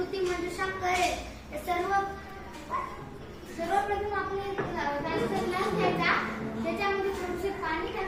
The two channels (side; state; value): both; identical; correlation 1.00